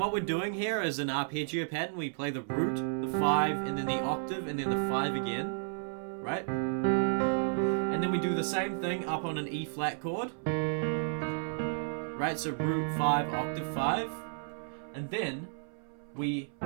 what we're doing here is an arpeggio pattern. We play the root, the 5, and then the octave, and then the 5 again. Right? And then we do the same thing up on an E flat chord. Right? So root 5, octave 5. And then we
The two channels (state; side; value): silent; left; 56 dB below the other